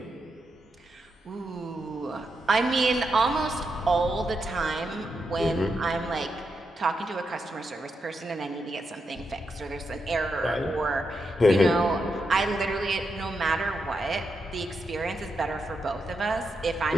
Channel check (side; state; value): both; normal; correlation 0.84